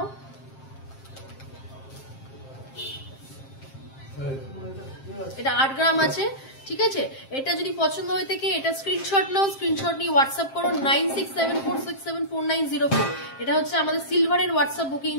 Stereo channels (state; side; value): late; right; 7.5 ms